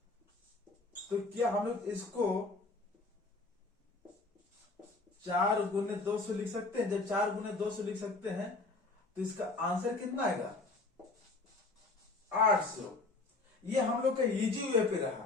तो क्या हम लोग इसको 4 गुने 200 लिख सकते हैं। जब 4 गुने 200 लिख सकते हैं तो इसका आंसर कितना आएगा 800। ये हम लोग का इजी वे पे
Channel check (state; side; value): quieter; right; 3.5 dB